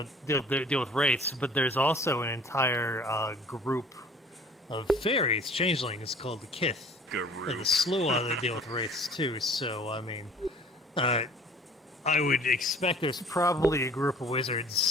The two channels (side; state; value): both; normal; correlation 0.50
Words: deal with wraiths, but there's also an entire group of fairies, changelings, called the Kith. And the Slua that deal with wraiths too. So I mean, I would expect there's probably a group of